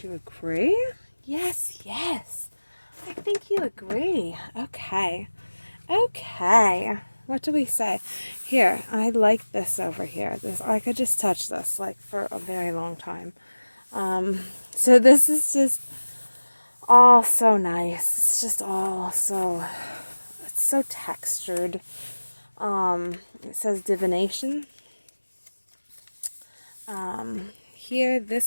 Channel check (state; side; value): inverted; both; correlation -1.00